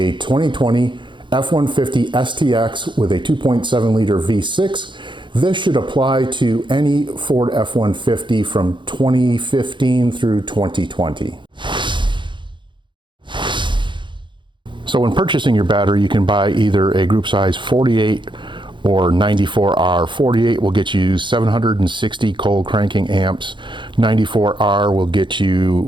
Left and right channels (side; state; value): left; late; 0.23 ms